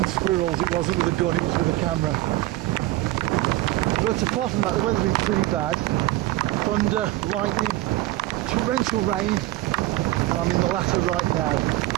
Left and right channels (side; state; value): left; quieter; 17.2 dB